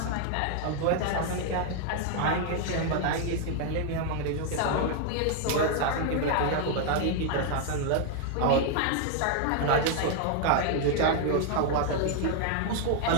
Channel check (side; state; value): both; different; correlation 0.00